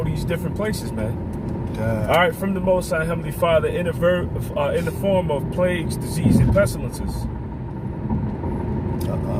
these different places, man. All right, from the Most High Heavenly Father in the form of plagues, disease, and pestilences.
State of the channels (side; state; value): both; identical; correlation 1.00